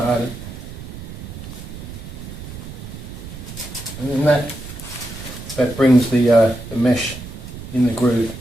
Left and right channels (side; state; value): right; noise; rumble, 11 dB below the sound